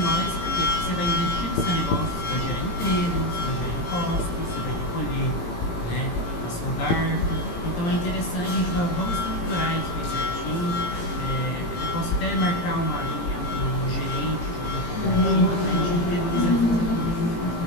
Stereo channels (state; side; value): late; right; 18 ms